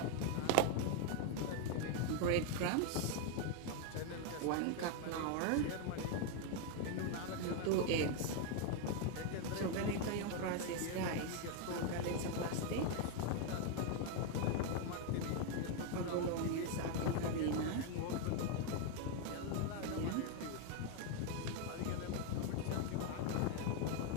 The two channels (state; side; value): different; both; correlation 0.01